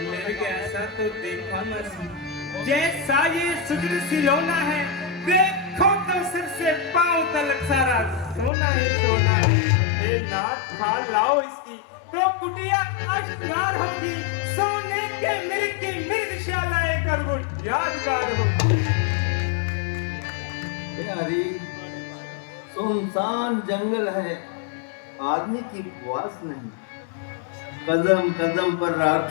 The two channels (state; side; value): drops out; right; at 8.5 s